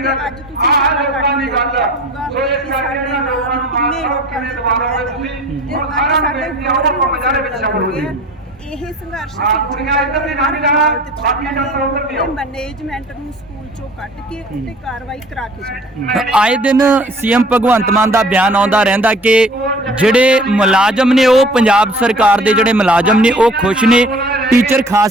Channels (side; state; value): both; normal; correlation 0.47